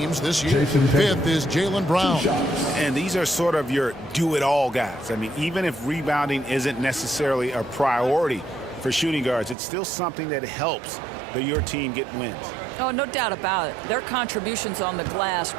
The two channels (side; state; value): left; drops out; at 9.6 s